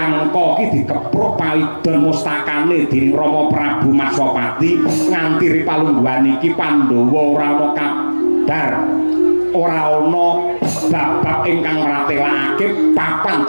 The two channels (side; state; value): both; inverted; correlation -1.00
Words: ki dikepruk paidon mustakane dening Rama Prabu Maswapati nganti ripalungguhan iki Pandhawa ora ana kabar ora ana babak ingkang ratelakake papan